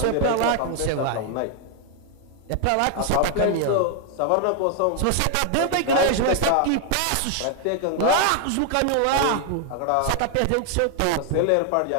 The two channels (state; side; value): different; both; correlation 0.00